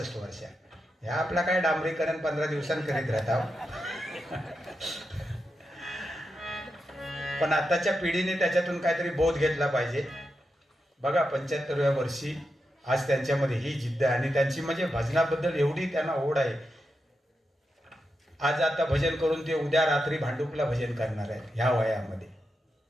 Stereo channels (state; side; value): normal; both; correlation 0.87